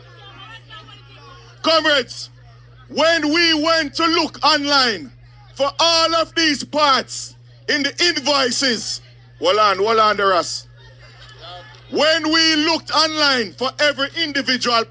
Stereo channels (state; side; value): identical; both; correlation 1.00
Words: Comrades, when we went to look online for all of these parts in the invoices, hold on, the rest. When we looked online for every individual